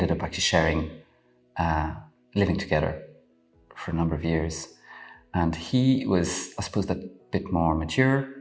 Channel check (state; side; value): identical; both; correlation 1.00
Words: up actually sharing, living together for a number of years. And he was, I suppose, a bit more mature,